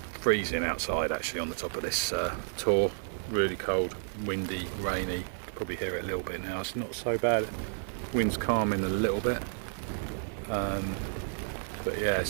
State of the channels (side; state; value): left; silent; digital silence